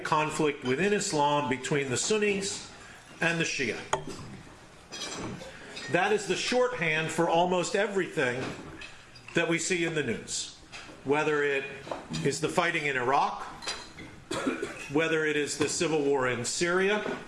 conflict within Islam between the Sunnis and the Shia. That is the shorthand for almost everything that we see in the news, whether it is the fighting in Iraq, whether it is the civil war in Syria,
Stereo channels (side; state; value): both; identical; correlation 1.00